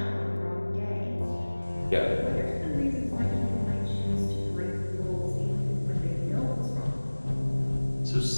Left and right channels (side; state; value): both; inverted; correlation -1.00